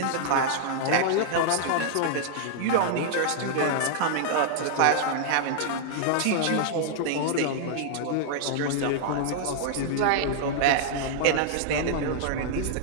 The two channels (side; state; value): both; different; correlation -0.01